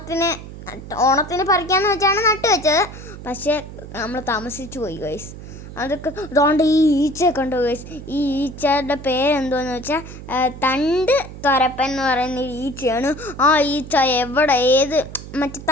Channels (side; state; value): right; noise; hum, 13 dB below the sound